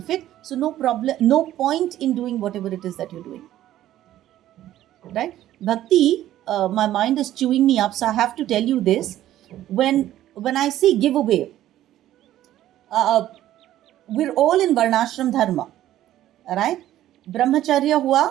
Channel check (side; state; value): left; quieter; 13.2 dB